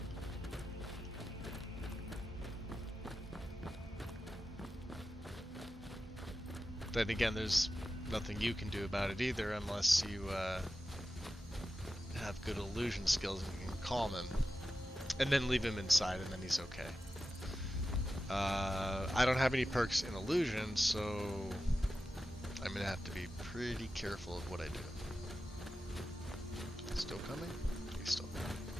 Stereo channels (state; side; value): normal; both; correlation 0.92